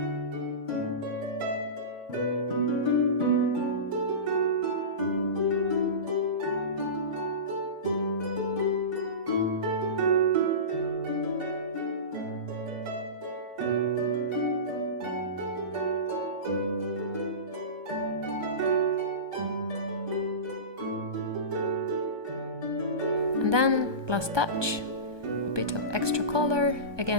And then, last touch, a bit of extra color,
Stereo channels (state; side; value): late; left; 1.2 ms